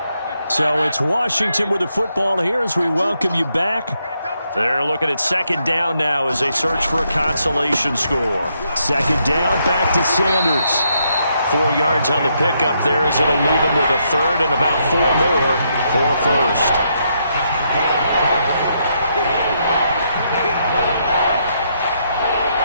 So it's Washington with the football here as we welcome you back. They're looking at 2nd down now as they search for a consolation score. 2nd down, back to Sanders. 4 yards on the pickup there as it'll leave him with a 3rd and about 4 more for a 1st.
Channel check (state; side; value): inverted; both; correlation -0.77